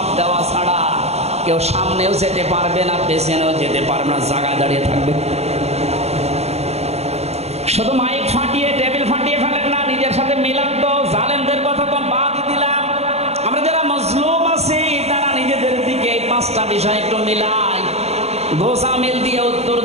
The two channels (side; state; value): left; late; 0.31 ms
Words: দেওয়া ছাড়া কেউ সামনেও যেতে পারবে না, পেছনেও যেতে পারবে না, জায়গায় দাঁড়িয়ে থাকবে। শুধু মাইক ফাটিয়ে টেবিল ফাটিয়ে ফেলেন না, নিজের সাথে মিলান তো। জালেমদের কথা তো বাদ দিলাম, আমরা যারা মজলুম আছি তারা নিজেদের দিকে এই 5টা বিষয় একটু মিলাই। গোসামিল দিয়ে উত্তর